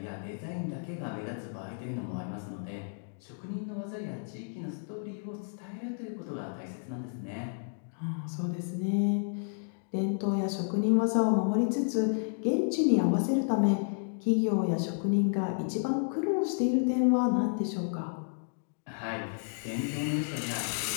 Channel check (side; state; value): right; silent; digital silence